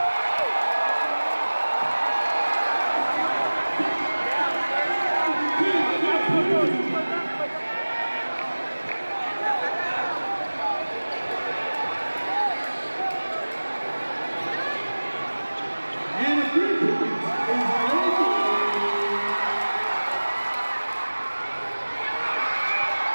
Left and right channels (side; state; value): both; inverted; correlation -1.00